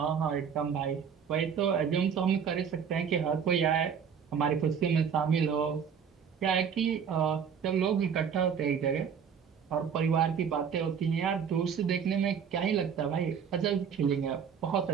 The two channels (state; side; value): quieter; left; 7.2 dB